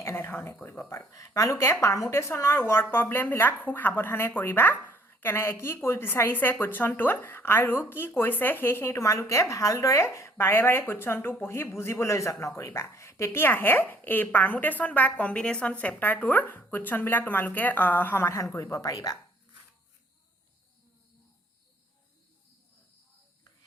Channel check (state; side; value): normal; both; correlation 0.60